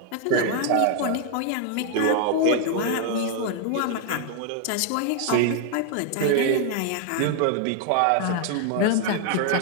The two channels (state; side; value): different; both; correlation 0.01